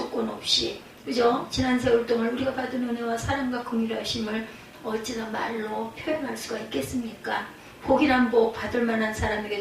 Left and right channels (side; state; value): both; identical; correlation 1.00